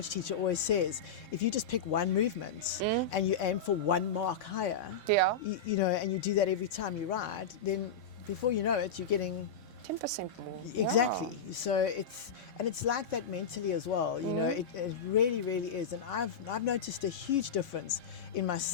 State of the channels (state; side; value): quieter; right; 5.0 dB